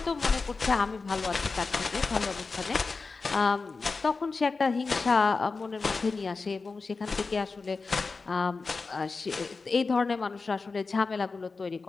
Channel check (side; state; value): right; quieter; 4.2 dB